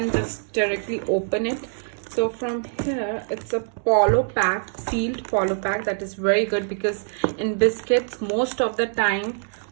just directly open it. So from here, it's a polo pack, sealed polo pack. That is very good, because in biscuits most of the time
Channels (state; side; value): silent; left; digital silence